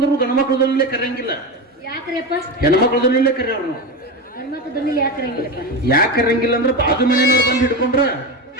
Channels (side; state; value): both; normal; correlation 0.19